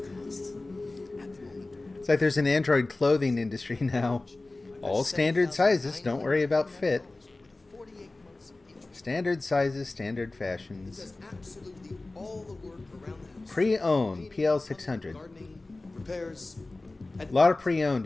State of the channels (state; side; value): quieter; right; 3.1 dB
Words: costs? At the moment. It's like there's an Android clothing industry now. All standard sizes, don't worry about fit. Standard sizes, standard fashions. Does absolutely all the work around the house. Pre-owned, PL600. Gardening, repairs, A lot of pre-owned,